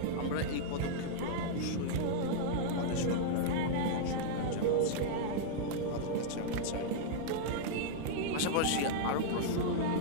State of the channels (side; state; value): both; different; correlation -0.01